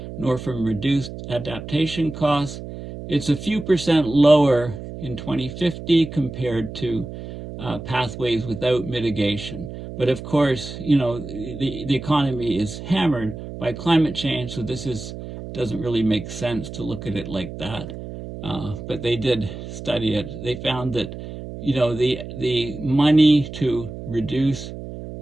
nor from reduced adaptation costs, it's a few percent lower in 2050 compared to pathways without mitigation. But of course, the economy is hammered by climate change, so this doesn't really make sense to look at it like that. But they did study it. They found that, the money to reduce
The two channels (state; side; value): noise; right; hum, 10 dB below the sound